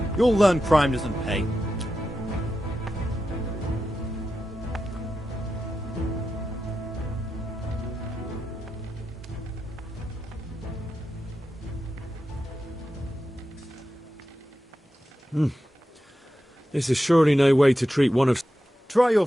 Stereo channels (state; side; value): normal; both; correlation 0.90